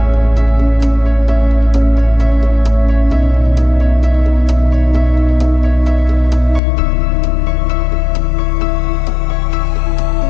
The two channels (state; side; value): drops out; right; at 6.6 s